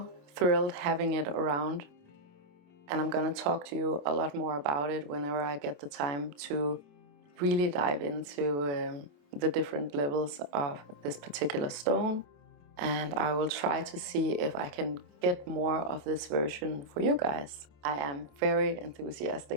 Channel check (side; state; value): left; late; 28 ms